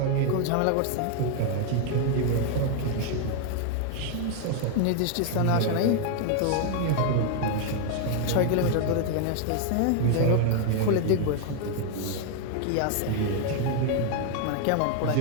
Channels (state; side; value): different; both; correlation 0.00